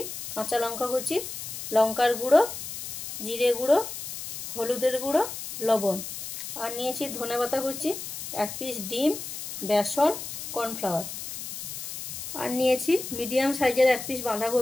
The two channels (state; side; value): noise; left; hiss, 8 dB below the sound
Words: কাঁচা লঙ্কা কুচি, লঙ্কার গুঁড়ো, জিরে গুঁড়ো, হলুদের গুঁড়ো, লবণ, আর নিয়েছি ধনেপাতা কুচি, এক পিস ডিম, বেসন, কর্নফ্লাওয়ার, আর নিয়েছি মিডিয়াম সাইজের এক পিস